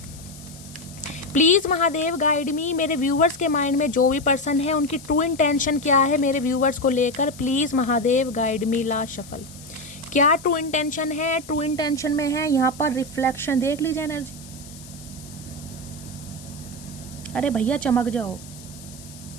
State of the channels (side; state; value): left; noise; hiss, 18 dB below the sound